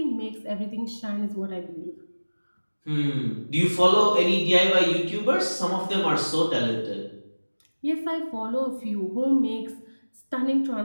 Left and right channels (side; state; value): both; inverted; correlation -1.00